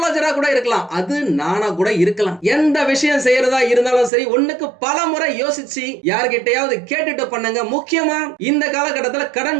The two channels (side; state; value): left; drops out; at 4.1 s